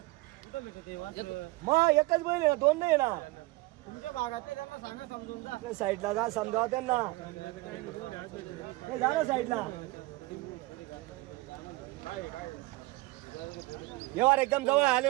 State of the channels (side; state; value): left; quieter; 21.4 dB